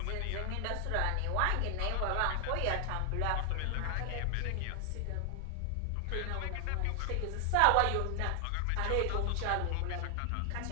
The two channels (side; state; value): both; different; correlation 0.00